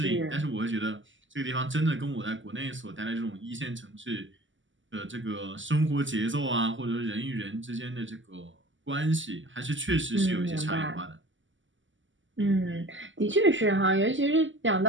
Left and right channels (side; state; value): left; late; 0.55 ms